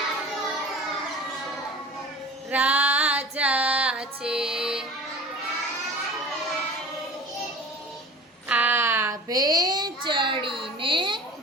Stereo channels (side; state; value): both; normal; correlation 0.39